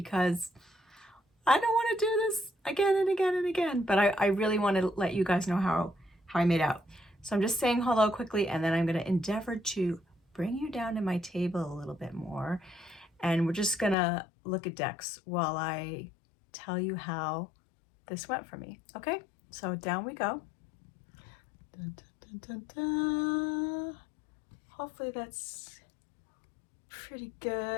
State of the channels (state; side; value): drops out; right; at 14.0 s